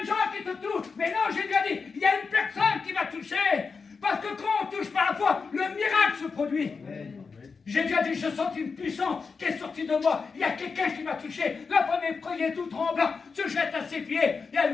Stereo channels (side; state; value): right; quieter; 5.0 dB